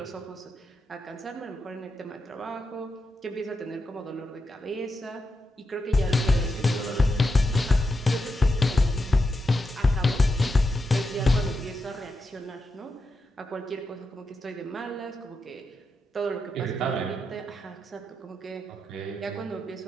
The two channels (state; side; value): normal; both; correlation 0.86